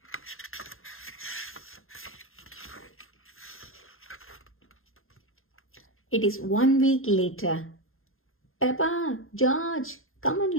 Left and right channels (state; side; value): late; right; 0.60 ms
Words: It is 1 week later. Peppa, George, come